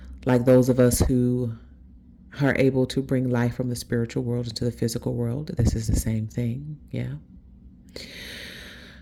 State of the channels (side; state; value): both; identical; correlation 1.00